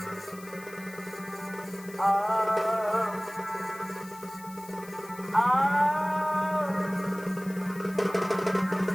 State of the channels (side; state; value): left; noise; hiss, 19 dB below the sound